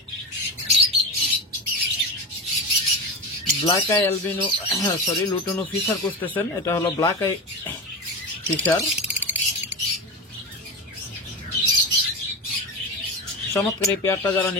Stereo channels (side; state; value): both; normal; correlation 0.22